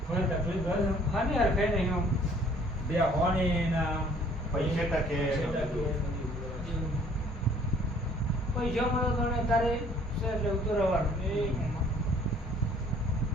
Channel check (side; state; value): both; normal; correlation 0.58